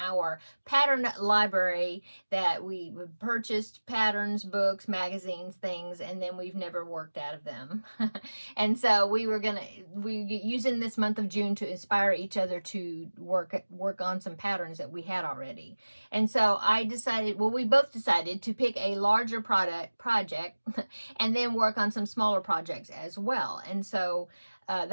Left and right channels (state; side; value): inverted; both; correlation -1.00